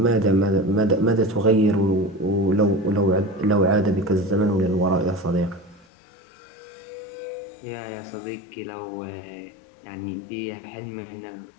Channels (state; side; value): drops out; right; at 5.9 s